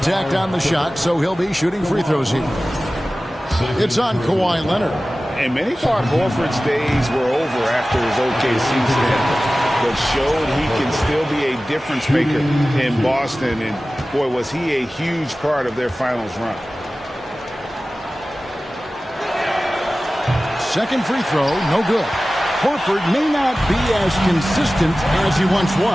on the shot, so he'll be shooting free throws here. It's on Kawhi Leonard. And many thought Horford's days were over after his OKC stint, but showed he can still be a difference maker in Boston. And boy, was he a huge part of their finals run. Second free throw, no good. Horford may not be as consistent as he once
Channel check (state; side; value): normal; both; correlation 0.96